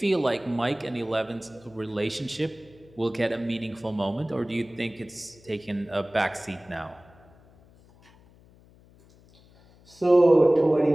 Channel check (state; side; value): noise; left; hum, 27 dB below the sound